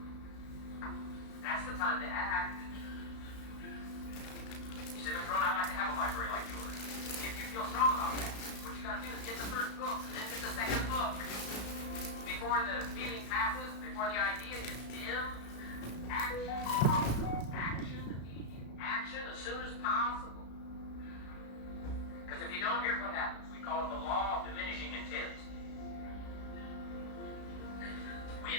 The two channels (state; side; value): late; right; 35 ms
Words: That's the time to act. You say, Mr. Ron, I'd like to have a library like yours. If you feel strong about that, what you got to do is get the first book and then get the second book. Before the feeling passes, before the idea is dim, action, immediate action as soon as possible. Because if you don't, here's what happens. We call it the law of diminishing intent. We